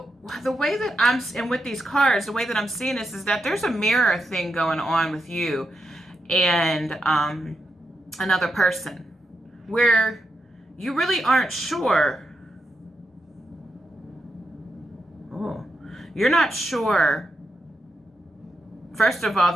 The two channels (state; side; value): normal; both; correlation 0.85